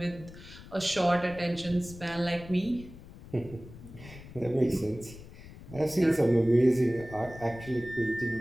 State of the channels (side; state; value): left; noise; rumble, 17 dB below the sound